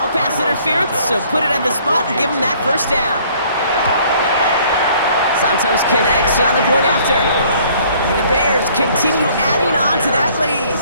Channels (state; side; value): inverted; both; correlation -0.59